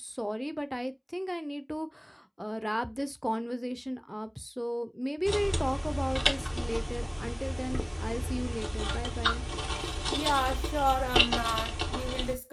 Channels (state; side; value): identical; both; correlation 1.00